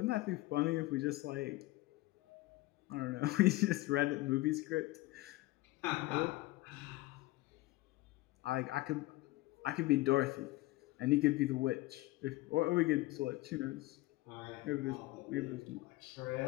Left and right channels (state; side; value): quieter; right; 19.4 dB